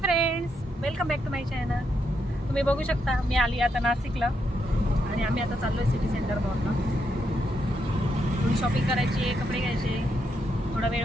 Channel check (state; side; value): normal; both; correlation 0.80